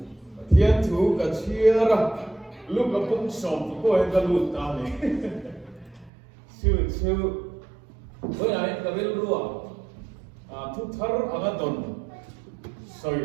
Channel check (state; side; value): drops out; left; at 6.1 s